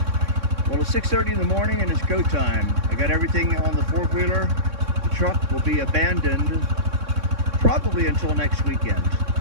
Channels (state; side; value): late; left; 3.6 ms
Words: Well, it's 6:30 in the morning and it's go time. I got everything on the four-wheeler. The truck will be abandoned probably until next weekend.